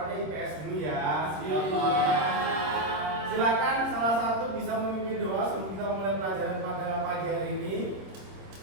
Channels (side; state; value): left; late; 26 ms